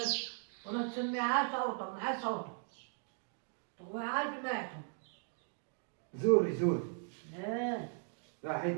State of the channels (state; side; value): silent; left; 53 dB below the other